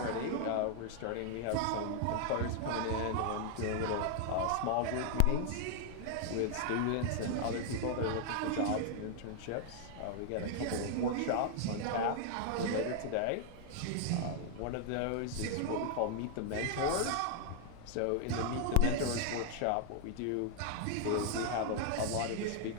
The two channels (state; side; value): different; both; correlation 0.00